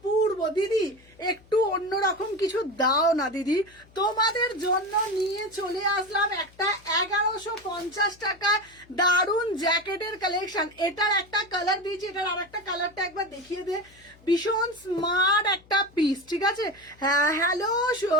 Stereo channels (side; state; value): left; noise; hum, 27 dB below the sound